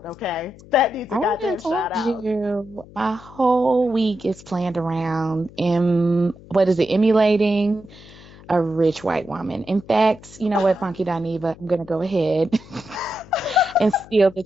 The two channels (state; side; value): noise; left; hum, 21 dB below the sound